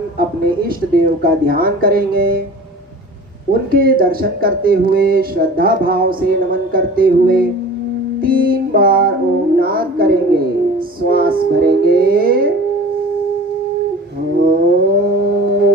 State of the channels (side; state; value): both; normal; correlation 0.41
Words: अपने इष्ट देव का ध्यान करेंगे। उनके दर्शन करते हुए, श्रद्धा भाव से नमन करते हुए 3 बार ओम नाद करेंगे। श्वास भरेंगे।